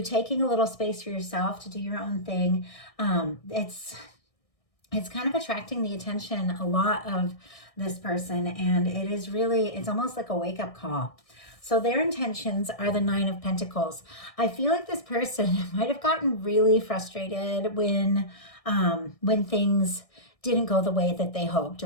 taking a little space for yourself to do your own thing. It's kind of attracting the attention a lot of this person. And it's almost like a wake-up call. So their intentions are the Nine of Pentacles. I feel like this person might have gotten really frustrated when things didn't go the way that they hoped,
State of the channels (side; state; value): right; late; 1.6 ms